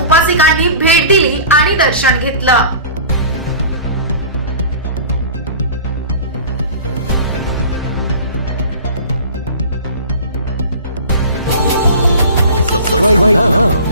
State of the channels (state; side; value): inverted; both; correlation -0.41